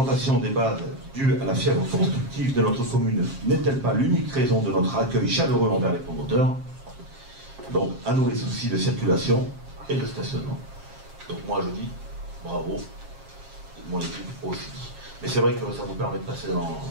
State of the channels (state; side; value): late; left; 7.4 ms